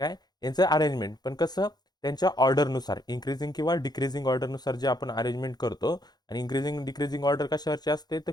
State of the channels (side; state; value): right; late; 0.20 ms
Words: काय यांचं अरेंजमेंट पण कसं? त्यांच्या ऑर्डरनुसार इन्क्रीजिंग किंवा डिक्रीजिंग ऑर्डरनुसार जे आपण अरेंजमेंट करतो. आणि इन्क्रीजिंग डिक्रीजिंग ऑर्डर कशावरची असते? तर